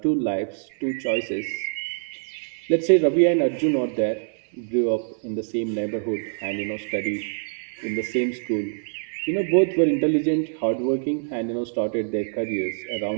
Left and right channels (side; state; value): left; silent; 58 dB below the other